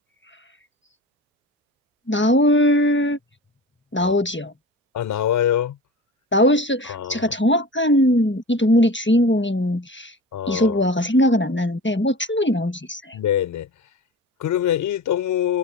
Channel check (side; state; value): both; normal; correlation 0.34